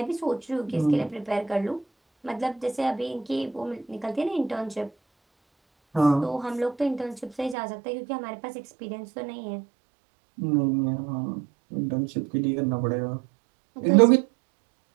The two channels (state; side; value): drops out; left; at 7.6 s